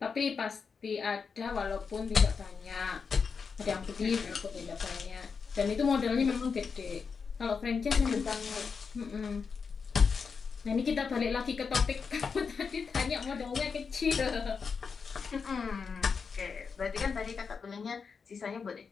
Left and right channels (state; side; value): quieter; right; 5.5 dB